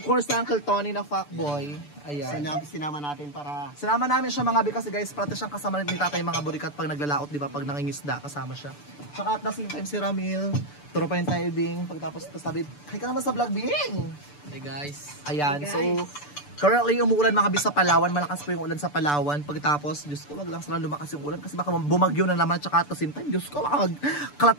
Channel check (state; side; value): late; right; 6.8 ms